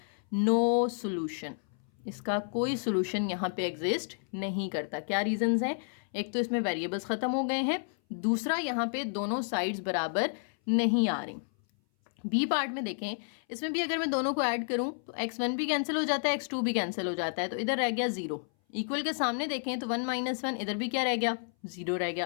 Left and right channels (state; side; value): silent; right; 57 dB below the other